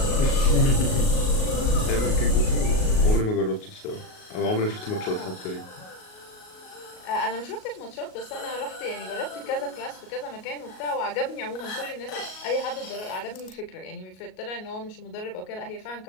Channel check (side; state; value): right; late; 38 ms